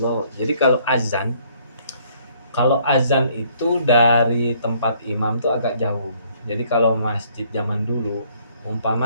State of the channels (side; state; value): both; inverted; correlation -0.63